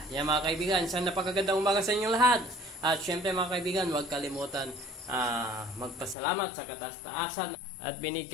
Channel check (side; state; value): right; drops out; at 6.2 s